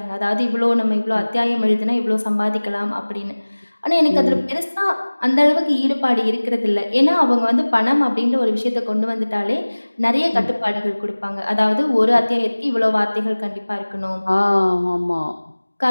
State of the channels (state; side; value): inverted; both; correlation -1.00